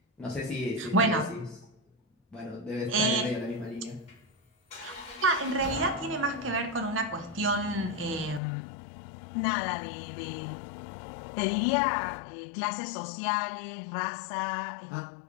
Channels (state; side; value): drops out; right; at 8.4 s